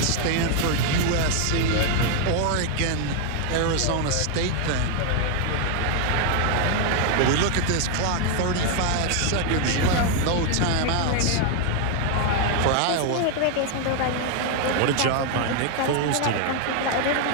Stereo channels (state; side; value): different; both; correlation 0.00